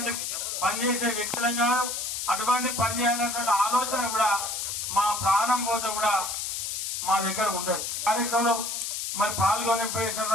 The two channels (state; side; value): noise; left; hiss, 3 dB below the sound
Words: పని చేసే వ్యక్తులం కాదు. అటువంటి పని చేయాలన్నటువంటి ఆలోచన కూడా మా ప్రాణం పోతే కూడా మా దగ్గర ఉంటుంది. కార్యక్రమంలో మరి పాల్గొని